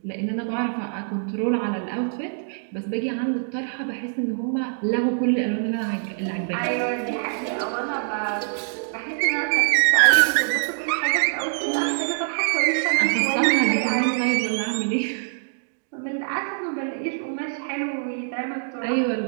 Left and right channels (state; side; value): silent; left; digital silence